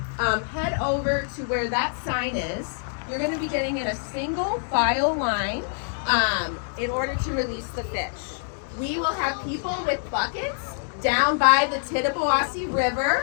head over to where that sign is. You're going to be getting in a single file line in order to release the fish. We will have people with buckets down by the Tittabawassee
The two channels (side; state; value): right; silent; digital silence